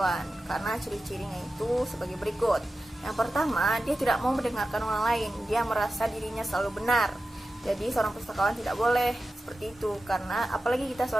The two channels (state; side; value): normal; both; correlation 0.93